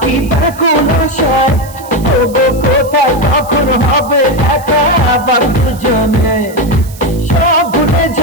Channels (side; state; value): right; noise; hiss, 20 dB below the sound